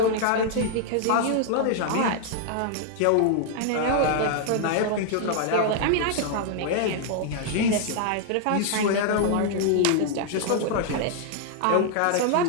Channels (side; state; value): both; different; correlation 0.00